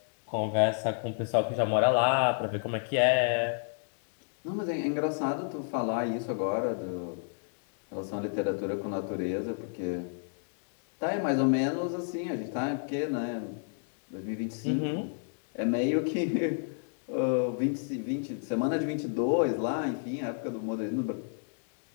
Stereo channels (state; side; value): silent; right; digital silence